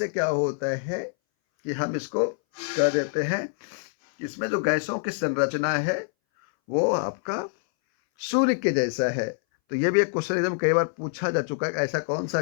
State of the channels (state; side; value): silent; right; 60 dB below the other